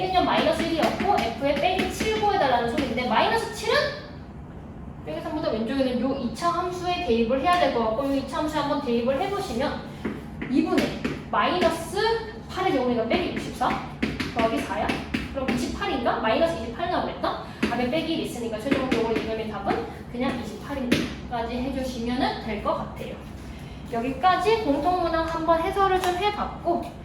마이너스 1이었고 F의 빼기 7 구해달라는 소리인데 마이너스 7은 빼기 3보다 왼쪽에는 요 2차 함수에 대입을 해야 될 것 같고 요 2차 함수에 한번 대입을 해보시면 2분의 마이너스 8의 경우에가 빼기 64 더하기 4야? 그럼 28인가? 마이너스 28 나오겠다? 답에 빼기 1 있으니까 최종적으로 이놈의 답은 그냥 28인까지 해주시면 될 것 같아요. 여기까지 공통문항 한번 해설을 좀 해봤고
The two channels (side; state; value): both; identical; correlation 1.00